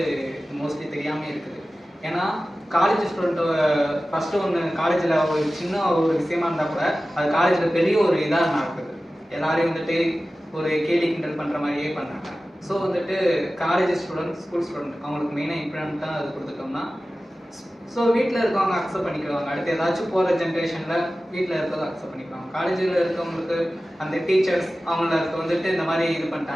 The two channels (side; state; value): both; normal; correlation 0.96